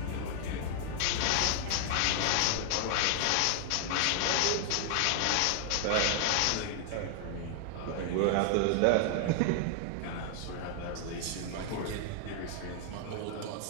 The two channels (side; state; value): both; different; correlation 0.00